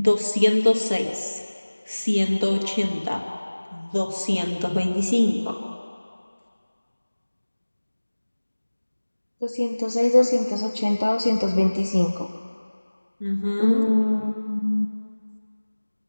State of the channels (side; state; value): both; inverted; correlation -1.00